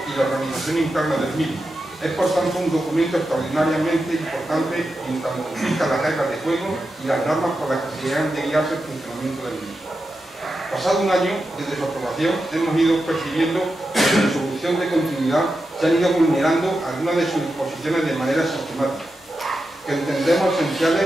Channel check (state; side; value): normal; both; correlation 0.89